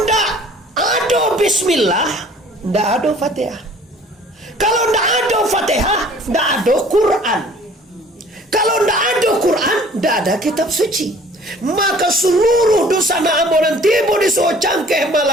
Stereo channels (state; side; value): normal; both; correlation 0.52